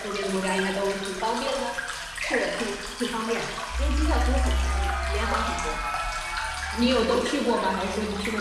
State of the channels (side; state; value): both; identical; correlation 1.00